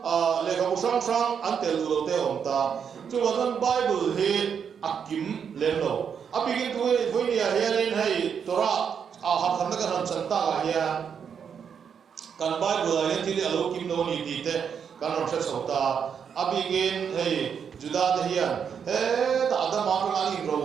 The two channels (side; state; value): left; quieter; 7.2 dB